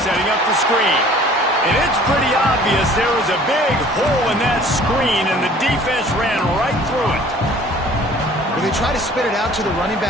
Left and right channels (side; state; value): both; normal; correlation 0.51